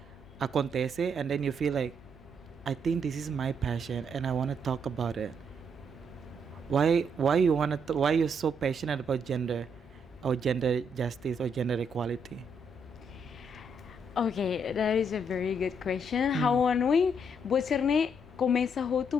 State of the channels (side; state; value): left; noise; hum, 25 dB below the sound